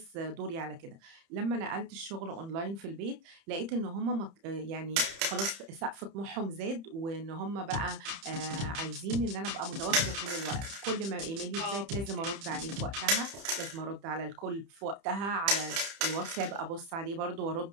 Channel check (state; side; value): late; left; 30 ms